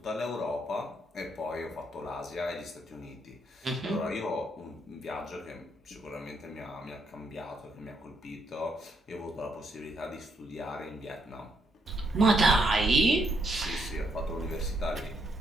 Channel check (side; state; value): both; normal; correlation 0.75